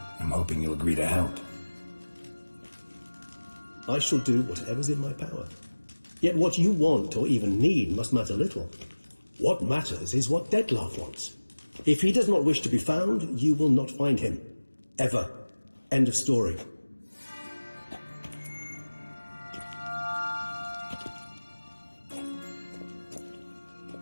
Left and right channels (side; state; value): both; inverted; correlation -1.00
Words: I'm hoping you'll agree to help. I shall do whatever's in my power. Yet what you want or even need must matter little. What matters is what Dettlaff wants. If he does not wish to be found, you will not find him. Ever. End of story.